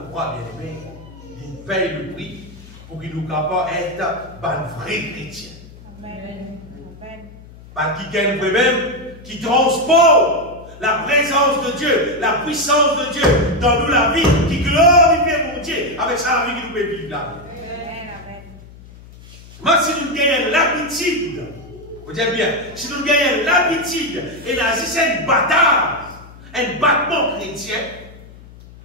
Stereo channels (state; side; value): noise; left; hum, 20 dB below the sound